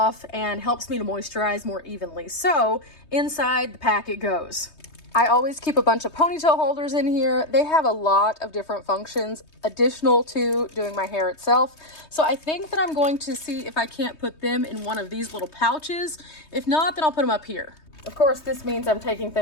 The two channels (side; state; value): right; late; 3.2 ms